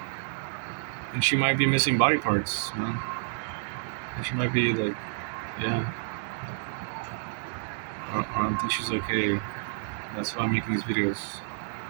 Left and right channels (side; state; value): left; silent; digital silence